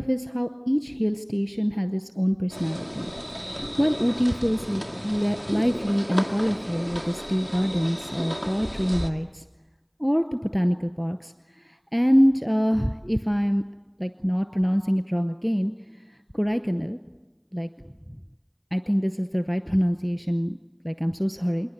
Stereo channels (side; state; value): both; identical; correlation 1.00